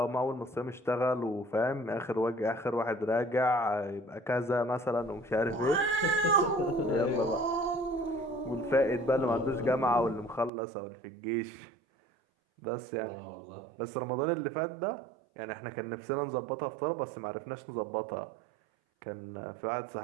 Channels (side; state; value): left; drops out; at 10.5 s